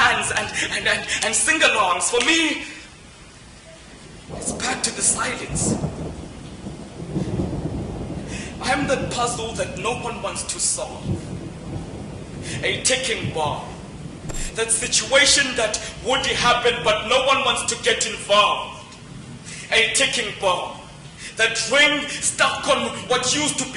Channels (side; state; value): both; identical; correlation 1.00